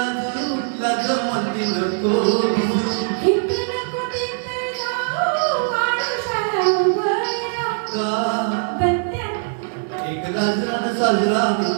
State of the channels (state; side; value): silent; left; 61 dB below the other